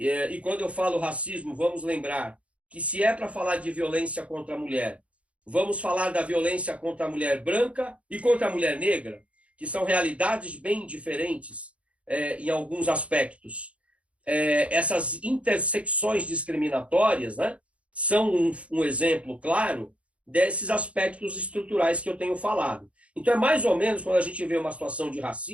quando eu falo racismo, vamos lembrar que se é para falar de violência contra a mulher, vamos falar da violência contra a mulher branca e contra a mulher negra, que são realidades bem diferentes em alguns aspectos. Essas intersecções discriminatórias, né, são um exemplo claro desses aspectos estruturais que eu tenho falado. Então, é mais ou menos quando a gente vê uma situação de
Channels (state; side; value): late; left; 0.063 ms